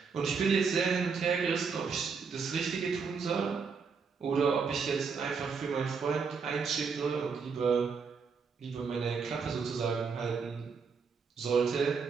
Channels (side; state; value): left; quieter; 5.5 dB